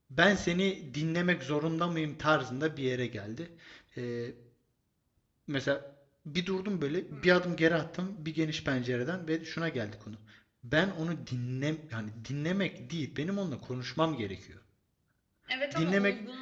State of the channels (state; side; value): identical; both; correlation 1.00